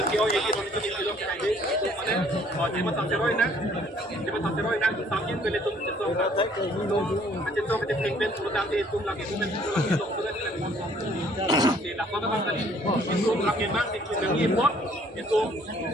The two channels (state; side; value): normal; both; correlation 0.60